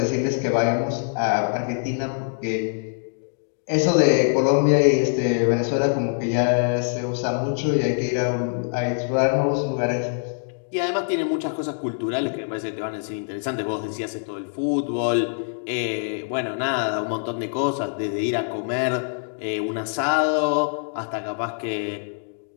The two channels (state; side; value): silent; right; digital silence